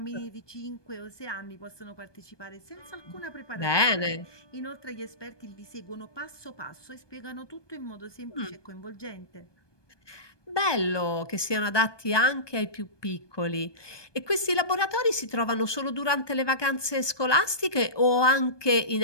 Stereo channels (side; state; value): right; late; 1.2 ms